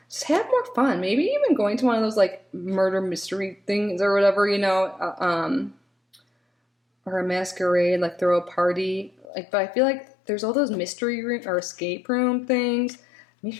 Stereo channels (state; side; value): drops out; right; at 9.2 s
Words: Just have more fun. Maybe even going to one of those like murder mystery things or whatever, or a masquerade, like throw a party. Like, but I feel like there's all those mystery room or escape room things.